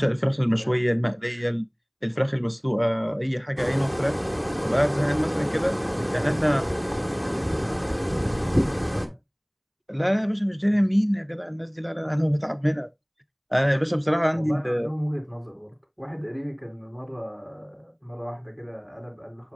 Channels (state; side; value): identical; both; correlation 1.00